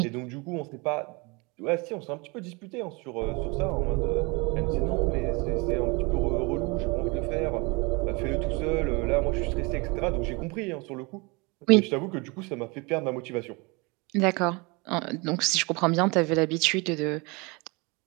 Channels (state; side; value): quieter; left; 27.7 dB